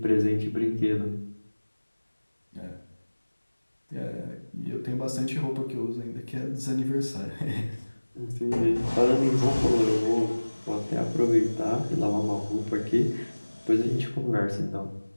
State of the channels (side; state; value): both; inverted; correlation -1.00